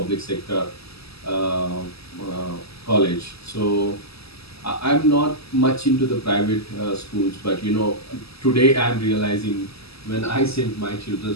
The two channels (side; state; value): right; late; 0.78 ms